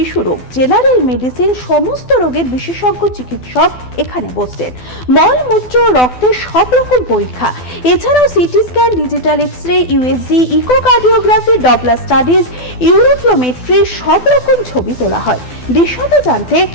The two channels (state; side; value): late; right; 12 ms